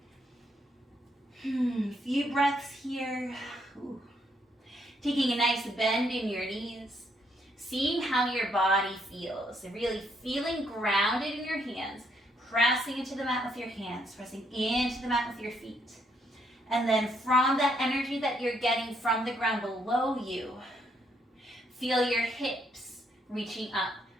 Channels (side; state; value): both; normal; correlation 0.73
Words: Few breaths here. Ooh. Taking a nice bend in your knees. Seeing how your body feels. And really feeling grounded in your hands. Pressing into the mat with your hands. Pressing into the mat with your feet. And then from that energy that you're getting from the ground below you, feel your hips reaching up